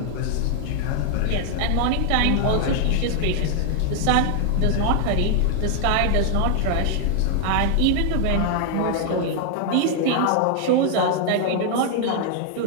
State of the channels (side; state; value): both; different; correlation 0.00